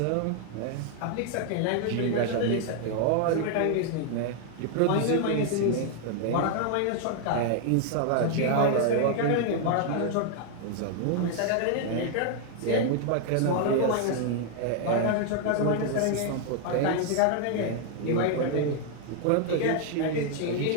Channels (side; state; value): both; different; correlation 0.00